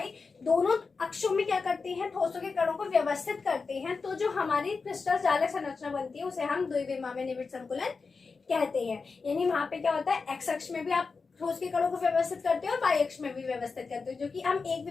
दोनों अक्षों में क्या करते हैं, ठोसों के कणों को व्यवस्थित करते हैं, तो जो हमारी क्रिस्टल जालक संरचना बनती है उसे हम द्विविमा में निविड़ संकुलन कहते हैं। यानी वहां पे क्या होता है, एक्स अक्ष में भी आप ठोस के कणों को व्यवस्थित करते हो और वाई अक्ष में भी व्यवस्थित करते हो, जो कि हम एक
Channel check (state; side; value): quieter; right; 4.6 dB